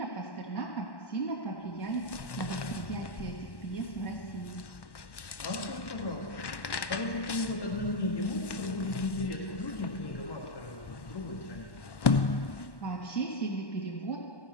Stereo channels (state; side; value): late; right; 1.1 ms